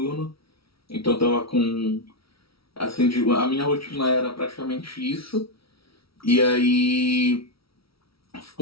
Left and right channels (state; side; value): late; right; 0.75 ms